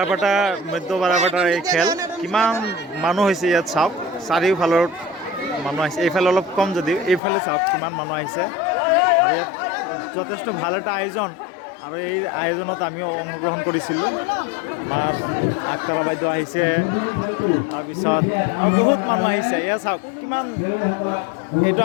মধ্য বাৰাপাটাৰ এই খেল কিমান মানুহ হৈছে ইয়াত চাওক, চাৰিওফালৰ মানুহ আহিছে। এইফালে অলপ কম যদিও এইফালে চাওক কিমান মানুহ আহিছে। আৰু ইয়াত যথেষ্ট ভাল এটা আয়োজন, আৰু এই আয়োজনত আমিও অংশগ্ৰহণ কৰিছিলোঁ। আমাৰ আগতলা বাইদেউ আহিছে, তাৰপিছত আৰু বহুত মানুহ আহিছে। এয়া চাওক কিমান, এইটো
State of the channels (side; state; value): right; drops out; at 7.2 s